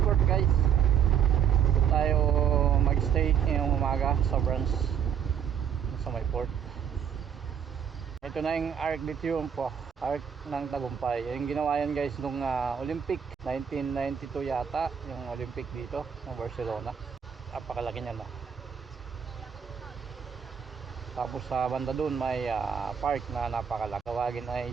guys. Ito tayo mag-stay ngayong umaga sa branch sa may port. Ito na yung Arc de Triunfo, Arc ng Tagumpay. Yung ginawa yan guys nung Olympic 1992 yata, yung Olympic dito ng Barcelona. Napakalaki niyan. Tapos sa banda dun may park na napakalaki. Tawagin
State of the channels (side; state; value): left; quieter; 8.2 dB